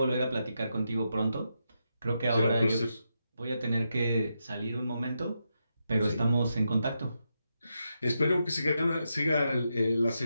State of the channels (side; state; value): both; inverted; correlation -0.85